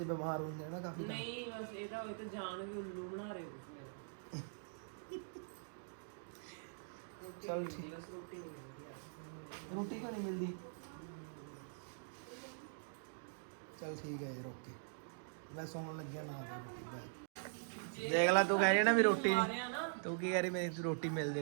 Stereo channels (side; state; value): left; silent; digital silence